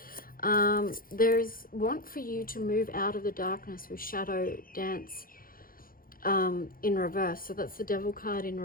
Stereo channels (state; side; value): late; right; 0.42 ms